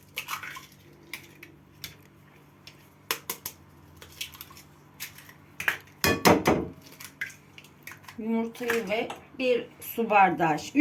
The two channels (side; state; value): both; identical; correlation 1.00